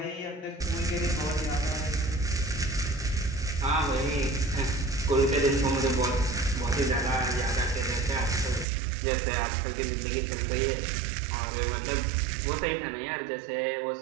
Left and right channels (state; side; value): drops out; left; at 8.7 s